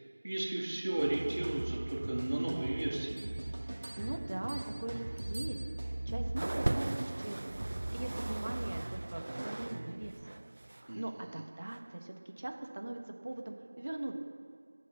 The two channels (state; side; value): inverted; both; correlation -1.00